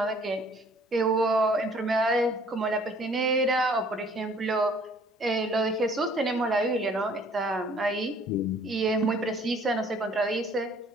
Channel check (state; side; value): normal; both; correlation 0.57